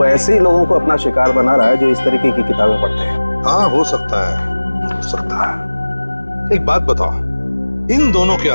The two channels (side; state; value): both; inverted; correlation -1.00